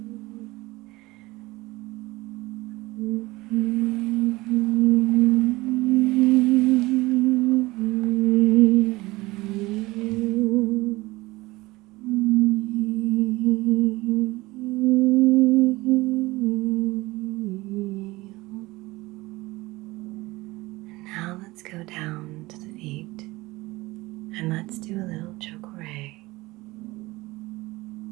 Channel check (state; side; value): quieter; left; 20.7 dB